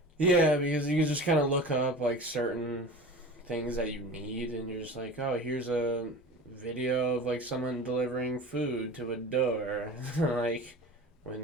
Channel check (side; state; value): both; normal; correlation 0.35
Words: Yeah, because you can just kind of look up like certain things that you need, and you're just like, oh, here's a video of like someone delivering food to a door, like